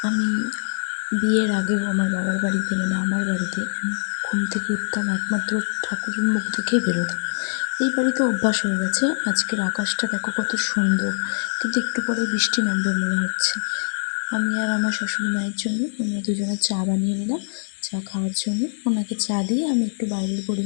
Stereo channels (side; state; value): right; silent; digital silence